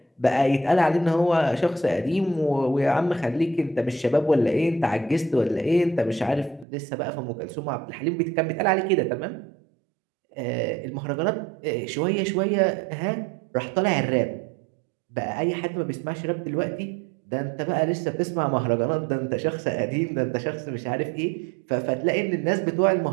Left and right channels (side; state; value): left; drops out; at 6.7 s